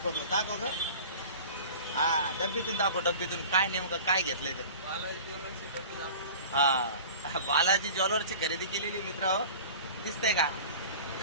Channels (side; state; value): both; inverted; correlation -0.39